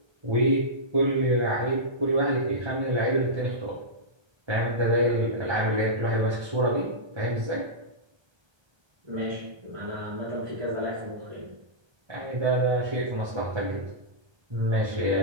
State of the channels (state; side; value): late; left; 1.3 ms